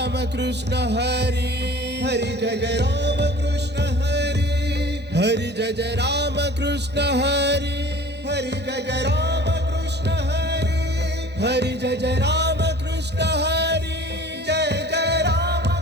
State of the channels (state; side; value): normal; both; correlation 0.45